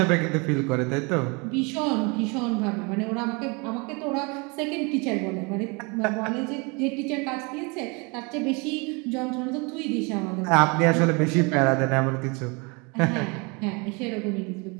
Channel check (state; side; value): quieter; left; 30.0 dB